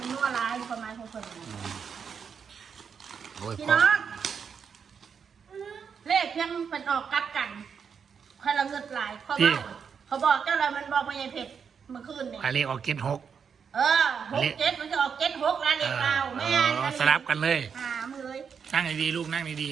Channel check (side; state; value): left; quieter; 6.7 dB